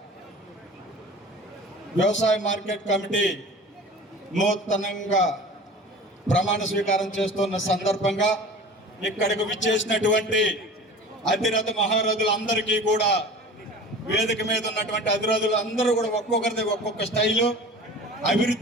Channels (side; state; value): both; normal; correlation 0.39